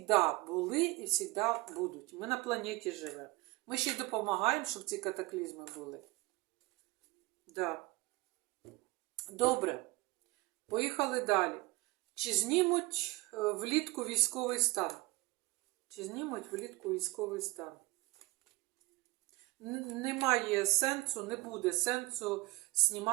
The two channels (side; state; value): left; quieter; 21.8 dB